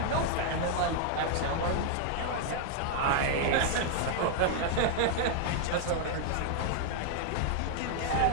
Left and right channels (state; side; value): different; both; correlation 0.00